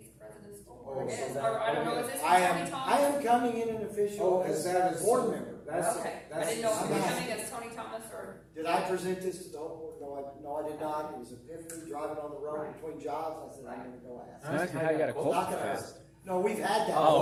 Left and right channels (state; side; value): identical; both; correlation 1.00